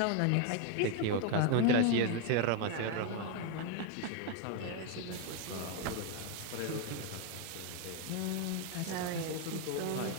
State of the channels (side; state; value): both; different; correlation 0.01